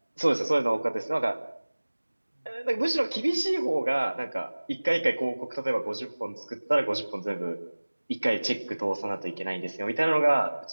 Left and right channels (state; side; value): inverted; both; correlation -1.00